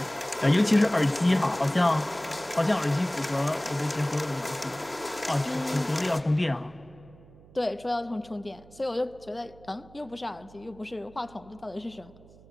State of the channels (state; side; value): noise; right; hum, 23 dB below the sound